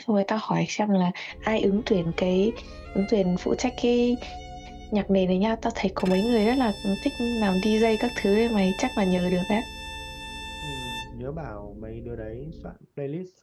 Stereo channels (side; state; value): both; identical; correlation 1.00